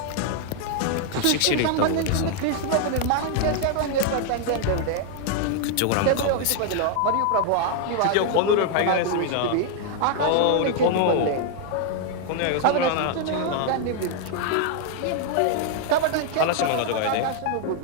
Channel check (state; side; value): different; both; correlation 0.00